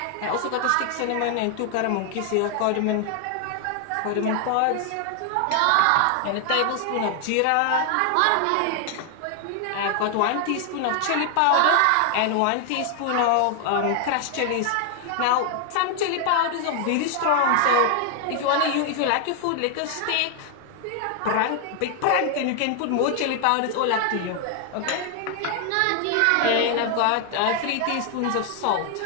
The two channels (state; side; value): different; both; correlation 0.00